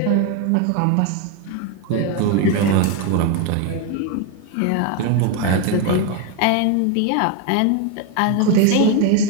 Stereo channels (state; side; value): different; both; correlation 0.01